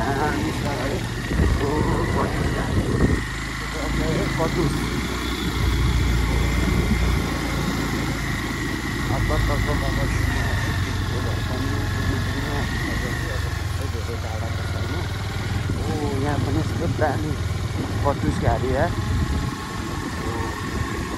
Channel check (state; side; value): identical; both; correlation 1.00